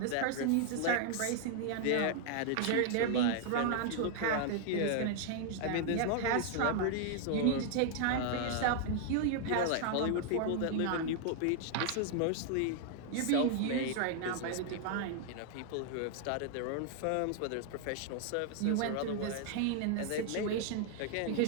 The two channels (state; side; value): different; both; correlation 0.00